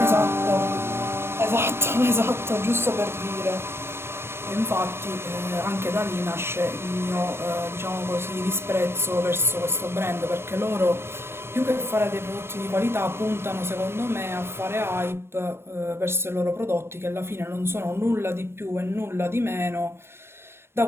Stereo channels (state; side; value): late; left; 0.12 ms